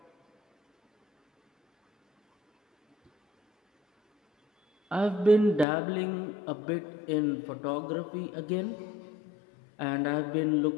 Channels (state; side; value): drops out; right; at 5.7 s